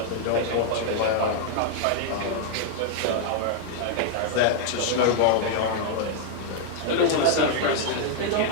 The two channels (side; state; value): both; different; correlation -0.01